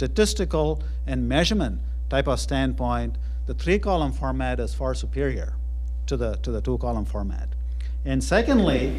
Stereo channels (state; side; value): identical; both; correlation 1.00